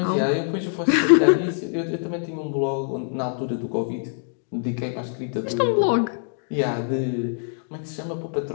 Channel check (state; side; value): silent; right; digital silence